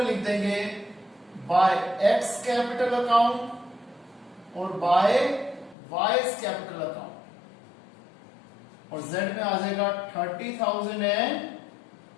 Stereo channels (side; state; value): right; drops out; at 5.8 s